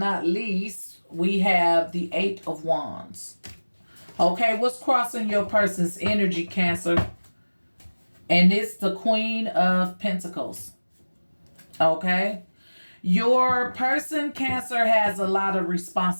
least, we have the Eight of Wands. Okay, what's crossing your person's energy, Cancer? And it's the Queen of Pentacles. Okay? Your person, Cancer, has a lot of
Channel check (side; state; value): both; inverted; correlation -1.00